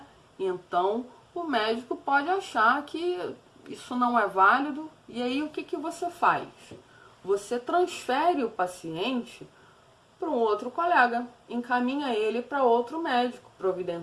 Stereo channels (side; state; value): both; identical; correlation 1.00